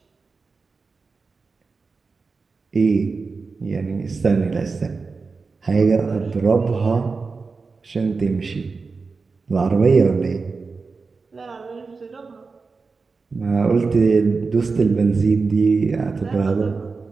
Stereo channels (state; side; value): quieter; left; 4.4 dB